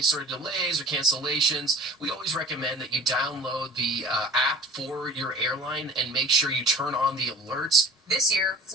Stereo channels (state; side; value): normal; both; correlation 0.42